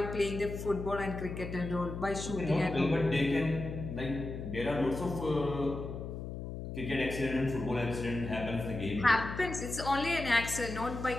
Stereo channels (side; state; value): left; noise; hum, 7 dB below the sound